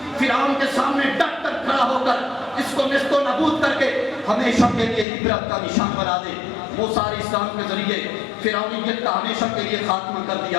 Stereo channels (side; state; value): right; drops out; at 5.1 s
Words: فرعون کے سامنے ڈٹ کر کھڑا ہو کر اس کو نیست و نابود کر کے ہمیشہ کے لیے عبرت کا نشان بنا دے۔ موسیٰ علیہ السلام کے ذریعے فرعونیت کا ہمیشہ کے لیے خاتمہ کر